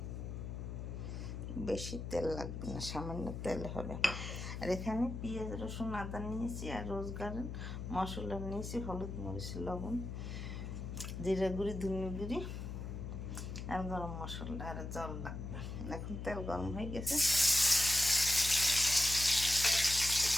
বেশি তেল লাগবে না, সামান্য তেল হবে। আর এখানে পেঁয়াজ রসুন আদা নিয়েছি, আর রোজগার মশলা নিয়েছি, হলুদ মরিচ লবণ জিরা গুঁড়ি ধনে গুঁড়ি আর গরম মশলা আর জল লাগবে। এখন তেল গরম হয়ে গেছে,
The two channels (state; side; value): noise; left; hum, 6 dB below the sound